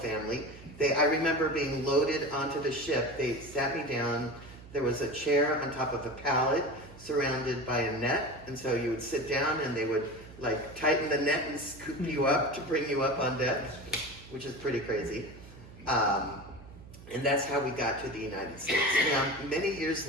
I remember being loaded onto the ship. They sat me down. There was a chair on top of a pallet surrounded by a net, and so you would sit down and they would like tighten the net and scoop you up to bring you up on deck, which is pretty crazy. And that's how we got to the United States. Now, many years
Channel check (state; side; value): noise; right; hum, 18 dB below the sound